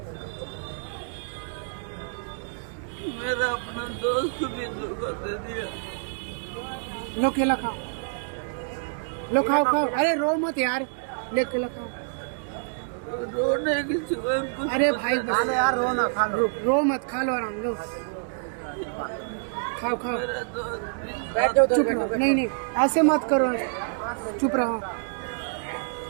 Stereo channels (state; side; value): silent; left; digital silence